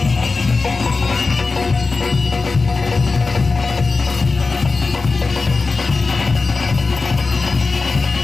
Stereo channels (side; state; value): right; quieter; 4.0 dB